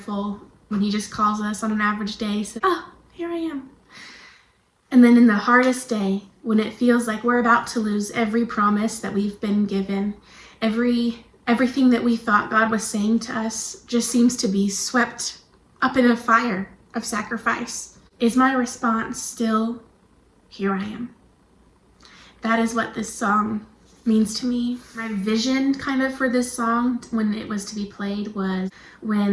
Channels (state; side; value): identical; both; correlation 1.00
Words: when he just calls us on an average day, says, oh, here I am. And then in the hardest day, when it feels like we're about to lose every promise that we've been given, everything that we thought God was saying to us just seems to be swept up in a fire of sacrifice. Is my response still, here I am? That is what this song means to me. My vision kind of for this song when it was to be played was